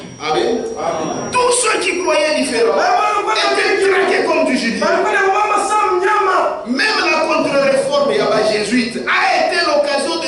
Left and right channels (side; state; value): both; identical; correlation 1.00